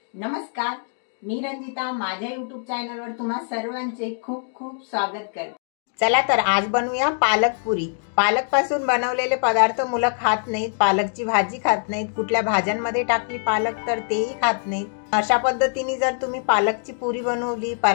नमस्कार, मी रंजिता माझ्या YouTube चॅनलवर तुम्हा सर्वांचे खूप खूप स्वागत करते। चला तर आज बनवूया पालक पुरी। पालक पासून बनवलेले पदार्थ मुलं खात नाहीत, पालकची भाजी खात नाहीत, कुठल्या भाज्यांमध्ये टाकली पालक तर तेही खात नाहीत। अशा पद्धतीने जर तुम्ही पालकची पुरी बनवली,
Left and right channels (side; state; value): right; silent; 63 dB below the other